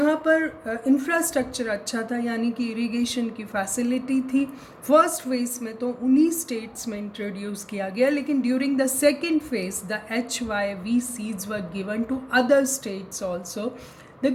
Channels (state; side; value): identical; both; correlation 1.00